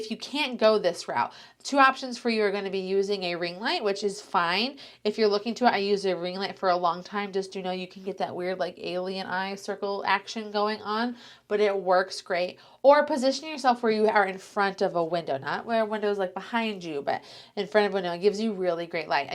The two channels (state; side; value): identical; both; correlation 1.00